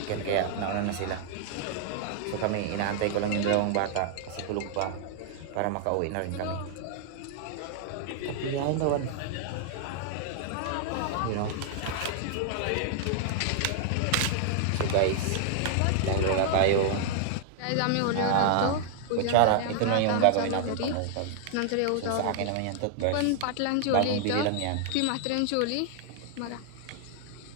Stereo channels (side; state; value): both; different; correlation -0.01